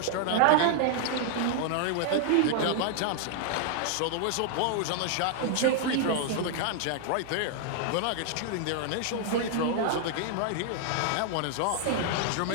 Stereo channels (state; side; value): different; both; correlation -0.01